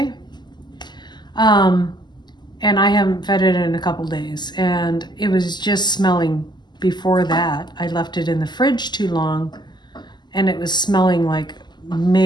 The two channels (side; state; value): right; late; 0.21 ms